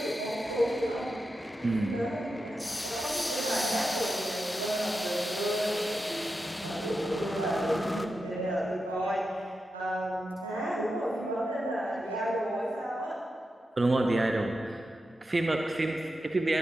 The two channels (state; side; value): normal; both; correlation 0.89